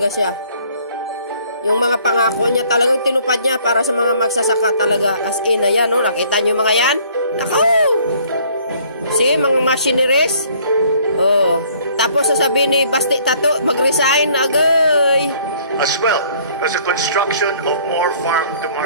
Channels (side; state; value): both; inverted; correlation -0.59